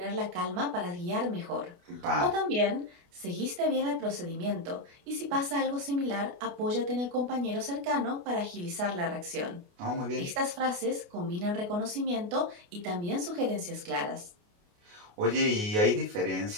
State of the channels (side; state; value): left; late; 28 ms